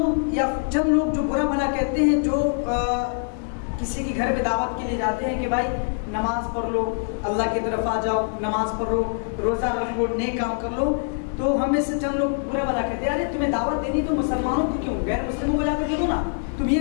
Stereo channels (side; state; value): right; silent; digital silence